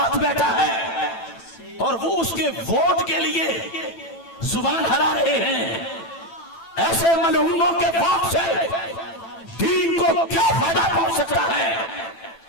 بیٹھا ہے، اور وہ اس کے ووٹ کے لیے زبان ہرا رہے ہیں، ایسے ملعونوں کے ووٹ سے دین کو کیا فائدہ پہنچ سکتا ہے؟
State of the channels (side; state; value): right; late; 9.0 ms